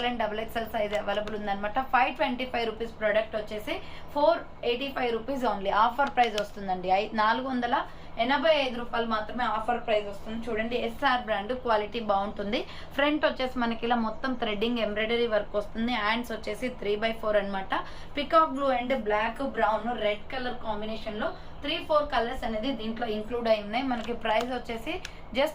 and XXL size available ఉంది అనమాట. 525 రూపీస్ ప్రొడక్ట్ వచ్చేసి 485 రూపీస్ ఓన్లీ ఆఫర్ ప్రైస్ వస్తుందండి. 485 రూపాయలు మాత్రమే ఆఫర్ ప్రైస్ వస్తుంది. చూడండి, SR బ్రాండ్, క్వాలిటీ బాగుంటుంది. ఫ్రంట్ వచ్చేసి మనకి ఇలా మొత్తం థ్రెడ్డింగ్ ఎంబ్రాయిడరీ వర్క్ వస్తుంది. హ్యాండ్స్ వచ్చేసి 3/4 అనమాట. Peacock blue and black, brown, red colour combination లో 3-4 కలర్స్ అనేది దీంట్లో ఇంక్లూడ్ అయి ఉన్నాయి. మనకి ప్రైస్ వచ్చేసి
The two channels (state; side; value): identical; both; correlation 1.00